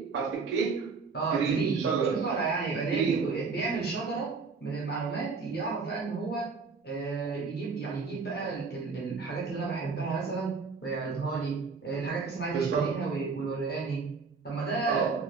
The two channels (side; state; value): left; quieter; 4.7 dB